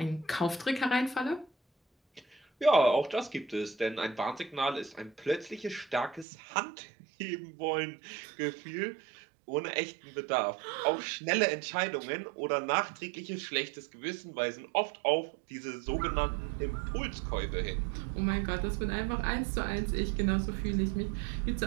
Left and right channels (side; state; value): left; drops out; at 6.2 s